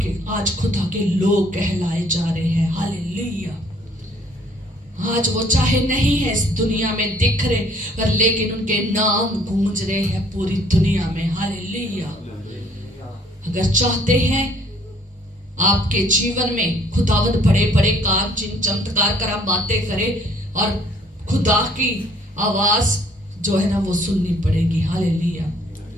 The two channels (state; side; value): normal; both; correlation 0.60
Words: आज खुदा के लोग कहलाए जा रहे हैं। हालेलुया। आज वो चाहे नहीं है इस दुनिया में दिख रहे, पर लेकिन उनके नाम गूंज रहे हैं पूरी दुनिया में। हालेलुया। अगर चाहते हैं आपके जीवन में खुदावंद बड़े बड़े काम, चिन्ह, चमत्कार, करामातें करे, और खुदा की आवाज जो है ना वो सुननी पड़ेगी। हालेलुया।